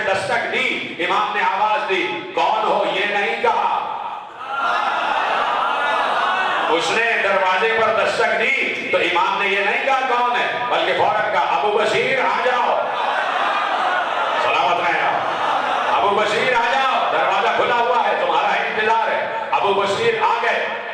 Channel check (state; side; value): identical; both; correlation 1.00